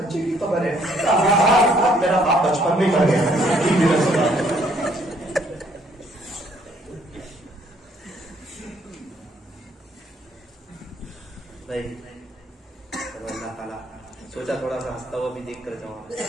بچے کی خبر ہے، میرا باپ بچپن میں مر گیا۔ بھائی اللہ تعالیٰ سوچا تھوڑا سا ہنستا ہوا بھی دیکھ کر جاؤں،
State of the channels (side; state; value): both; normal; correlation 0.65